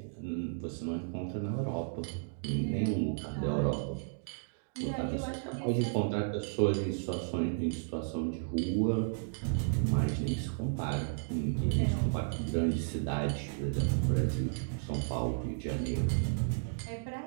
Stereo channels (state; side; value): silent; left; digital silence